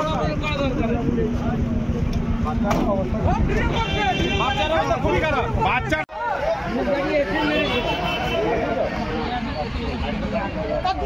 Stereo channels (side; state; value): both; identical; correlation 1.00